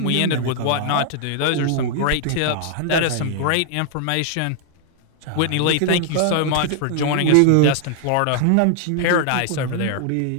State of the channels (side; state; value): both; different; correlation 0.00